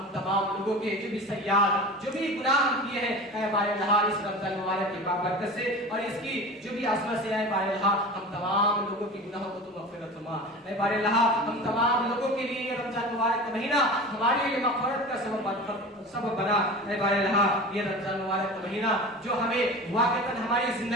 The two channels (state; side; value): normal; both; correlation 0.33